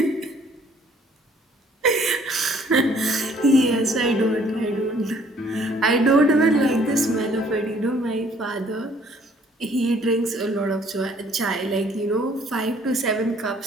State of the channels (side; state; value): both; normal; correlation 0.60